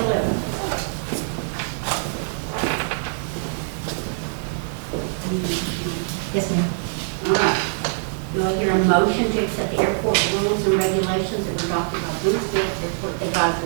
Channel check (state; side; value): silent; left; digital silence